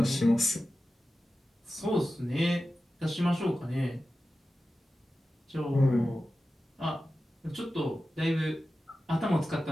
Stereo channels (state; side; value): normal; both; correlation 0.94